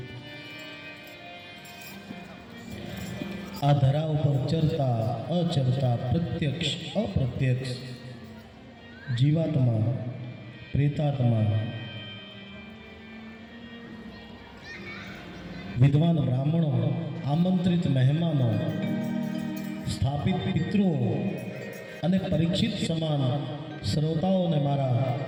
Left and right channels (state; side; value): identical; both; correlation 1.00